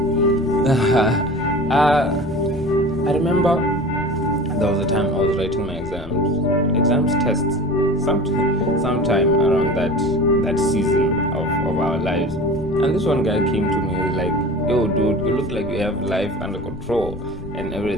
I remember there was a time I was writing my tests, sometime around that that season of our lives. And this one guy came to me and was like, yo dude, you look like you have life under control and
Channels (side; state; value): left; noise; rumble, 14 dB below the sound